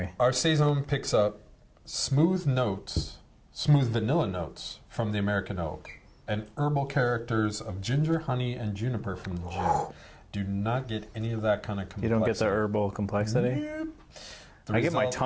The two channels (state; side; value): identical; both; correlation 1.00